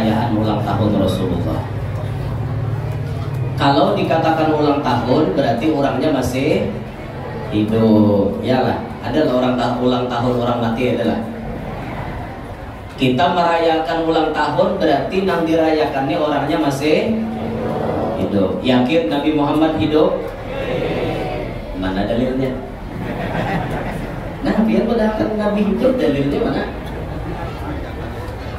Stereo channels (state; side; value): identical; both; correlation 1.00